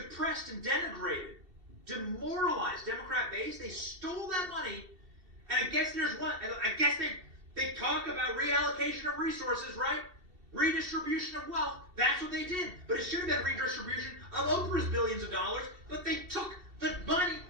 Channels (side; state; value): left; late; 2.7 ms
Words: and denigrated, demoralized Democrat base. They stole that money, and I guess there's one. I guess they talk about reallocation of resources, right? Redistribution of wealth. That's what they did. But it should have been redistribution of Oprah's billions of dollars. But they took the money